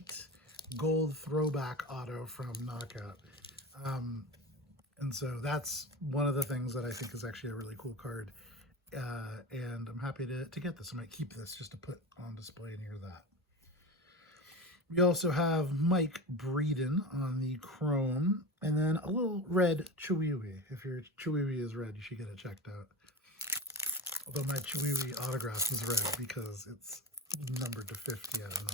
gold throwback auto from Knockout. And so that's one of the things that I think is actually a really cool card. And I'm happy to get this. I might keep this just to put on display near that. We also have Mike Breeden on the chrome, and then a little red Chiwiwi. If your Chiwiwi is red, you should get it checked out. Although my Chiwiwi autograph is red because it's numbered to 50 at a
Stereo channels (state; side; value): normal; both; correlation 0.26